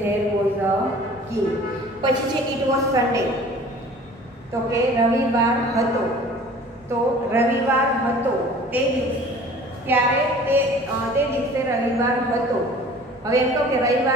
was a king. પછી છે it was Sunday, તો કે રવિવાર હતો. તો રવિવાર હતો તે દિવસે, ત્યારે તે દિવસે રવિવાર હતો. હવે એમ કહો કે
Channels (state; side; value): normal; both; correlation 0.47